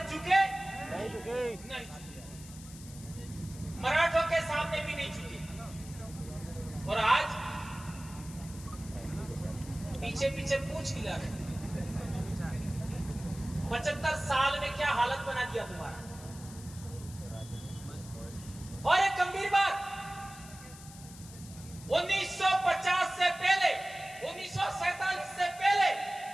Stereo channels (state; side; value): noise; left; hiss, 17 dB below the sound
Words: झुके? नहीं झुके। नहीं झुके। मराठों के सामने भी नहीं झुके। और आज पीछे पीछे पूछ हिला रहे। 75 साल में क्या हालत बना दिया तुम्हारा। और एक गंभीर बात, 1950 से पहले, 1947 से पहले